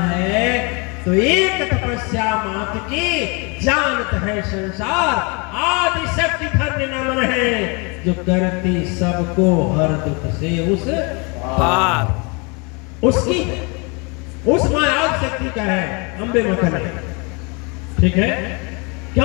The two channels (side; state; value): right; quieter; 31.1 dB